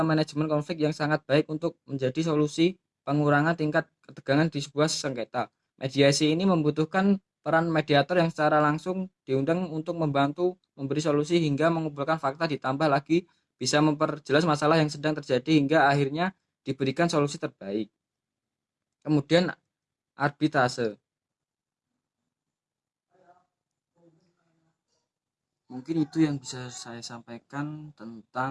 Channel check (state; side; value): identical; both; correlation 1.00